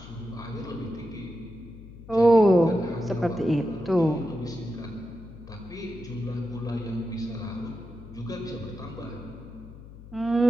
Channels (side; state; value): left; noise; hum, 16 dB below the sound